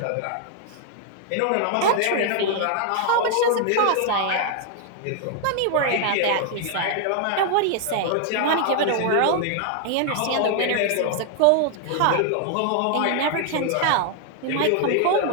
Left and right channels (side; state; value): both; different; correlation 0.00